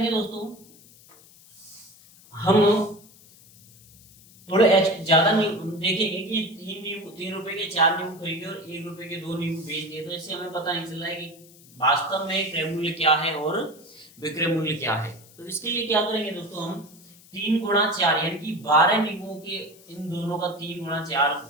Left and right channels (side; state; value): left; noise; hiss, 24 dB below the sound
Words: दोस्तों, हम थोड़े ज्यादा देखेंगे कि 3 रुपए के 4 नींबू खरीदे और 1 रुपए के 2 नींबू बेच दिए, तो इससे हमें पता नहीं चल रहा है कि वास्तव में क्रय मूल्य क्या है और विक्रय मूल्य क्या है। तो इसके लिए क्या करेंगे दोस्तों, हम 3 गुणा 4 यानी कि 12 नींबुओं के इन दोनों का 3 गुणा 4,